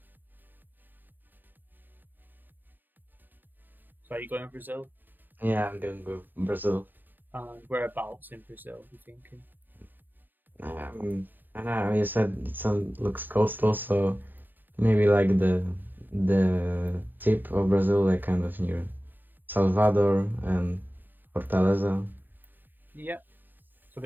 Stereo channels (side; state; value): left; late; 0.090 ms